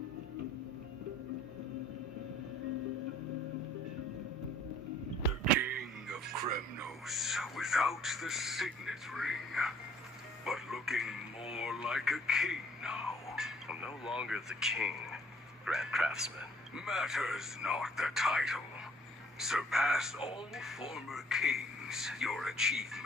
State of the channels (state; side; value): normal; both; correlation 0.58